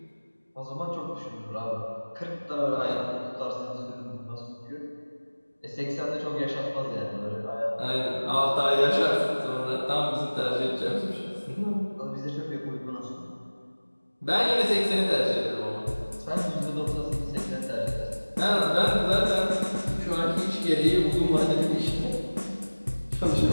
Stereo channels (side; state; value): both; inverted; correlation -1.00